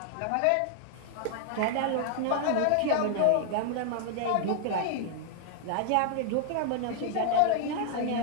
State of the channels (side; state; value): both; different; correlation -0.01